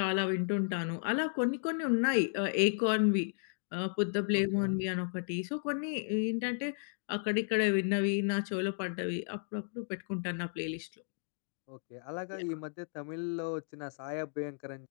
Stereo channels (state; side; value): silent; right; digital silence